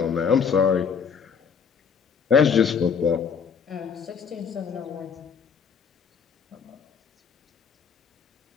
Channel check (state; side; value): quieter; right; 6.6 dB